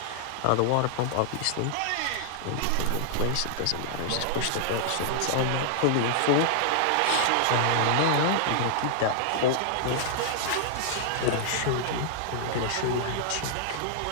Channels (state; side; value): different; both; correlation -0.01